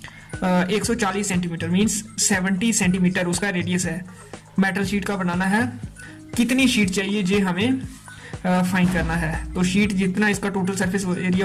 140 centimetre means 70 centimetre उसका radius है। Metal sheet का बनाना है। कितनी शीट चाहिए ये हमें फाइंड करना है। तो शीट जितना इसका टोटल सरफेस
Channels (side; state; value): both; identical; correlation 1.00